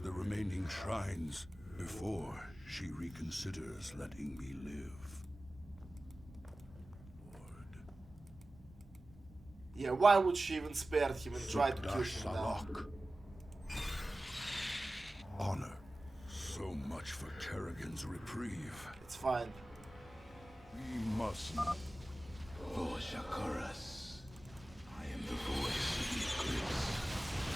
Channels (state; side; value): normal; both; correlation 0.96